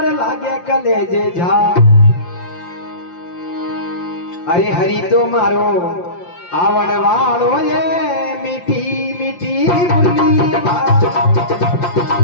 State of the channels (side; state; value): right; late; 5.7 ms